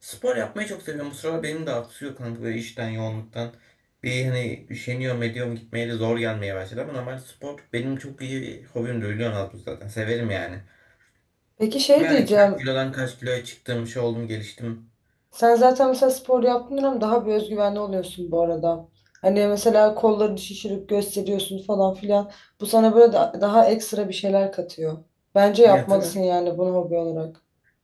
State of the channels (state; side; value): identical; both; correlation 1.00